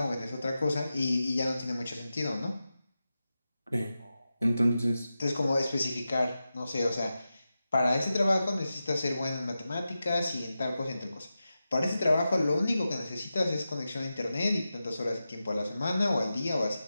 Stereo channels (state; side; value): inverted; both; correlation -0.92